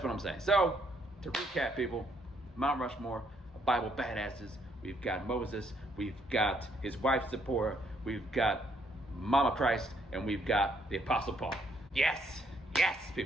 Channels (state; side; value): normal; both; correlation 0.70